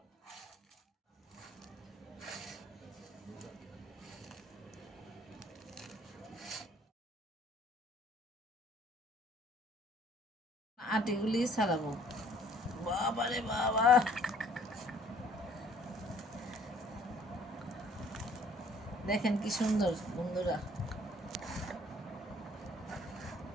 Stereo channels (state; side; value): normal; both; correlation 0.58